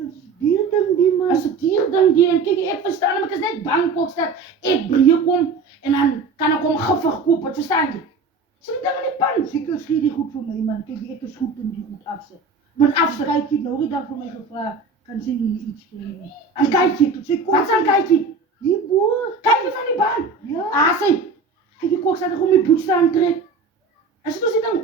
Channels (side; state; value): left; quieter; 4.2 dB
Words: is dier ding die man. As 'n dier ding die en kyk, ek verstaan, maar ek is net bang Kokstad ek breek kom en dan kan ek hom giftig koop, wat verstaan jy? Sit dit ding in die pan. Seker skie die goed vir my man. Kyk, ek is goed in die goed afsit. Want afsit, Kykie nou die dag vir my gevra, kan sy nie iets kry nie. en kykie, Sy kom wat is aan kykie? die boer. Kykie van die baan. Ja. Sy, kyk die Kokstad ek om die boets te aantrek. As dit ons die